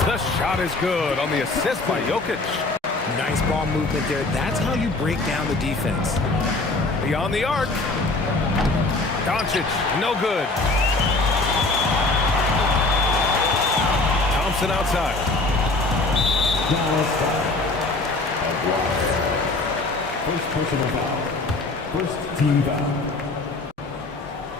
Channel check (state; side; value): quieter; right; 3.2 dB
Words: shot is good on the assist by Jokic. Nice ball movement there. That's how you break down the defense. Beyond the arc. Doncic, no good. Thompson outside. First personal foul. First team foul.